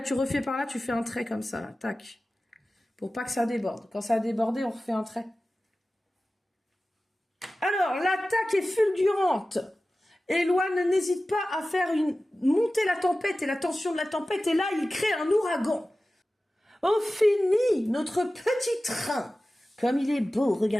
tu refais par là, tu fais un trait comme ça, là. Tac. Pour pas que ça déborde. Quand ça a débordé, on refait un trait. Alors, l'attaque est fulgurante. Eloane n'hésite pas à faire monter la tempête et la tension de la tempête. Et là, il crée un ouragan. On finit notre petit train. Comme il est beau,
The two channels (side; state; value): both; normal; correlation 0.96